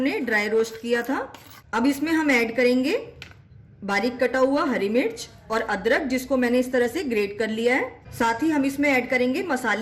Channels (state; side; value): identical; both; correlation 1.00